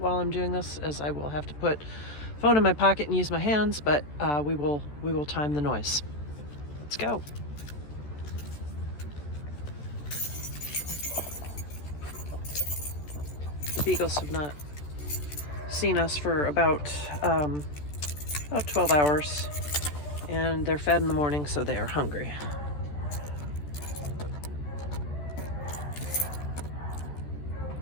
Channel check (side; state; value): right; late; 14 ms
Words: I'm doing this, as I will have to put phone in my pocket and use my hands, but we will time the noise. Let's go. The beagles have not seen us for about 12 hours, and they're fed in the morning, so they are hungry.